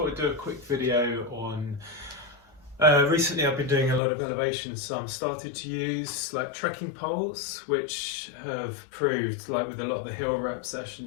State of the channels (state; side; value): drops out; right; at 4.0 s